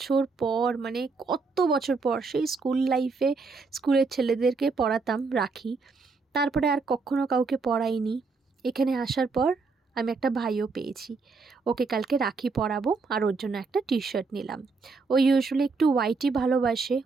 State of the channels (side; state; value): left; quieter; 4.3 dB